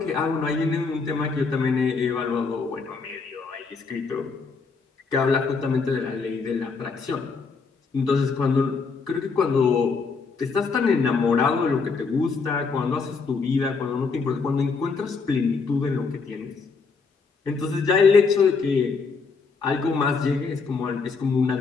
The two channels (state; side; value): quieter; right; 4.7 dB